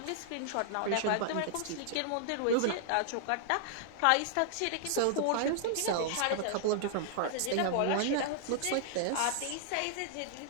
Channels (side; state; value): both; different; correlation -0.01